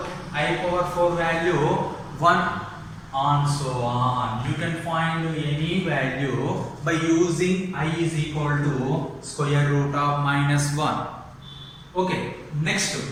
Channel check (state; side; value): identical; both; correlation 1.00